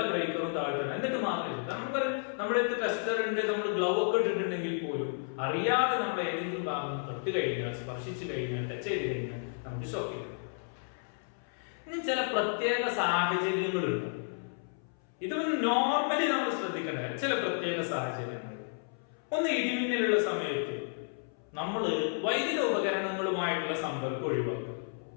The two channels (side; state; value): right; silent; 56 dB below the other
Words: ബ്രേക്കറും താഴ്ത്തണം. എന്നിട്ട് മാത്രമേ നമുക്ക് നമ്മുടെ അടുത്ത് ടെസ്റ്റർ ഉണ്ട്, നമ്മൾ ഗ്ലൗ ഒക്കെ ഇട്ടിട്ടുണ്ടെങ്കിൽ പോലും അറിയാതെ നമ്മൾ ഏതെങ്കിലും ഭാഗം തൊട്ട് കഴിഞ്ഞാൽ, സ്പർശിച്ചു കഴിഞ്ഞാൽ, ടച്ച് ചെയ്ത് കഴിഞ്ഞാൽ നമുക്ക് ഷോക്ക് ചെയ്യും. ഇനി ചില പ്രത്യേക സാഹചര്യങ്ങളുണ്ട്. ഇത് നോർമലി നമ്മൾ ശ്രദ്ധിക്കേണ്ട ചില പ്രത്യേക സാഹചര്യങ്ങൾ. ഒന്ന്, ഇടിമിന്നലുള്ള സമയത്ത് നമ്മൾ വൈദ്യുത ഉപകരണങ്ങളുമായിട്ടുള്ള സമ്പർക്കം ഒഴിവാക്കുക.